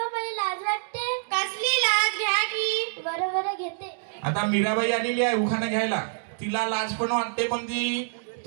मला लाज वाटते. कसली लाज? घ्या की. बरं बरं घेते. आता मीराबाई आलेली आहे उखाणा घ्यायला. तिला लाज पण वाटते पण ती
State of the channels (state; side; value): silent; left; digital silence